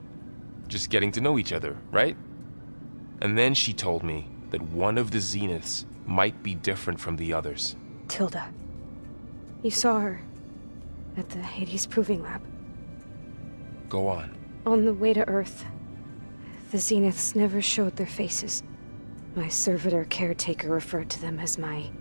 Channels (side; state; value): both; inverted; correlation -1.00